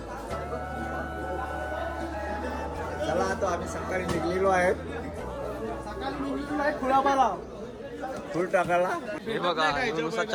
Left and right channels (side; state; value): both; identical; correlation 1.00